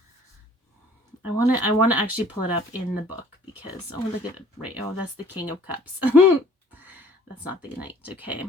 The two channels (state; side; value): normal; both; correlation 0.54